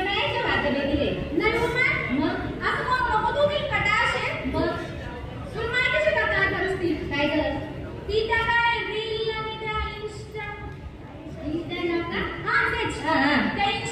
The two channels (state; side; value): identical; both; correlation 1.00